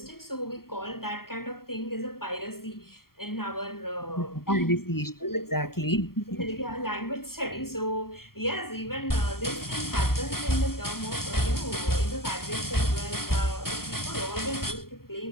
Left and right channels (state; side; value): late; right; 0.93 ms